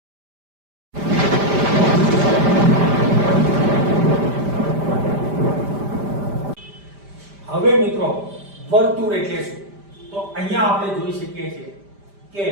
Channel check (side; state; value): left; late; 5.0 ms